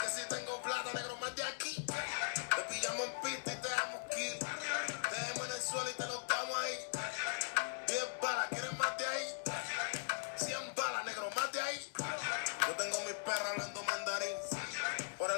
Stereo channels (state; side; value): silent; right; digital silence